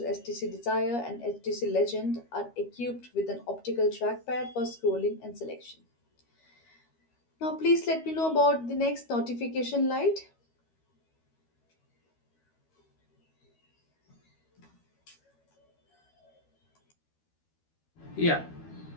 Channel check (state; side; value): late; right; 13 ms